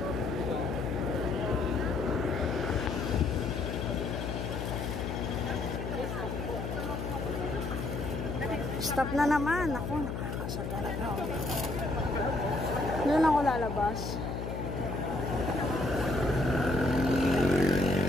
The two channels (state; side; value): noise; left; hum, 4 dB below the sound